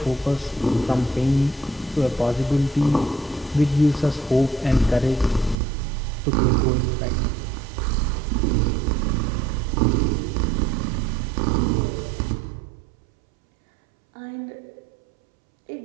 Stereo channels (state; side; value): drops out; left; at 5.6 s